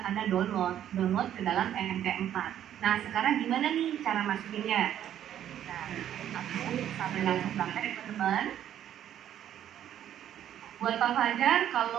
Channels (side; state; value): left; quieter; 10.8 dB